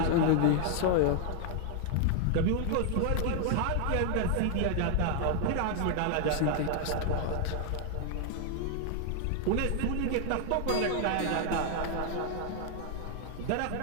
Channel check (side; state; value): both; different; correlation 0.00